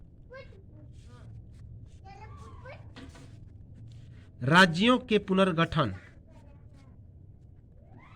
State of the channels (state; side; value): identical; both; correlation 1.00